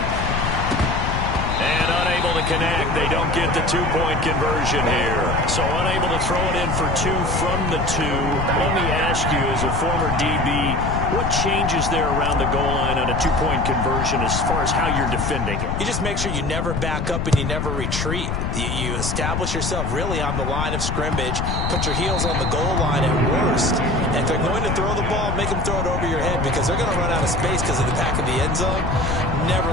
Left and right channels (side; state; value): left; noise; rumble, 1 dB below the sound